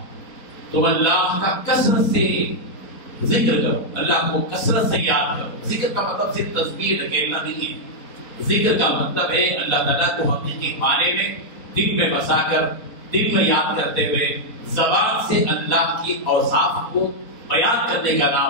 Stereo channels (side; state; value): right; late; 4.1 ms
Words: تم اللہ کا کثرت سے ذکر کرو، اللہ کو کثرت سے یاد کرو۔ ذکر کا مطلب صرف تسبیح اکیلا نہیں ہے، ذکر کا مطلب ہے اللہ تعالیٰ کو حقیقی معنی میں دل میں بسا کر، دل میں یاد کرتے ہوئے زبان سے اللہ کی اوصاف کو بیان کرنے کا